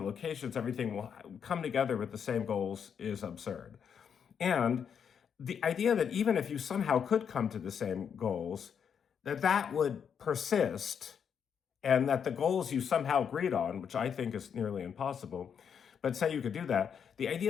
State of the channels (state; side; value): quieter; right; 7.5 dB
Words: locations, everything will come together with the same goals is absurd. And the idea that even if you somehow could come to the same goals, that would persist, and that the goals you somehow agreed on, which I think is nearly impossible, but say you could do that, the